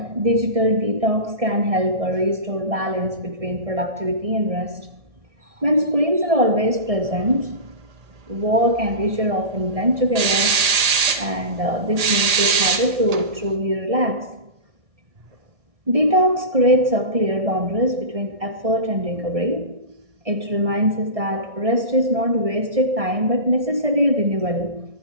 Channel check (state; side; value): late; left; 1.8 ms